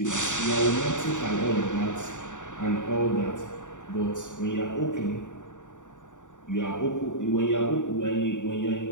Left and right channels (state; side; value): late; right; 0.86 ms